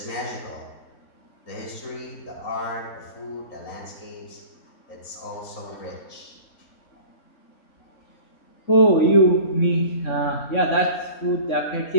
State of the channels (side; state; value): right; late; 3.6 ms